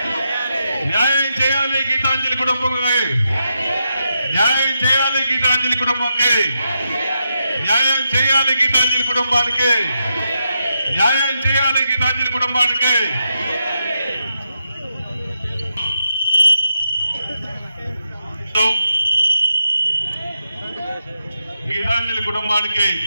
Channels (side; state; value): both; inverted; correlation -0.84